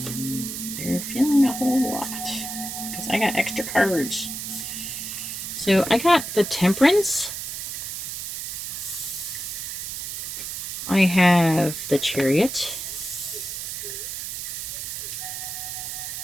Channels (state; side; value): noise; right; hiss, 6 dB below the sound